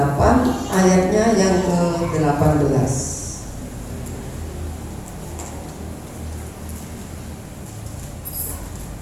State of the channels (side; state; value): both; identical; correlation 1.00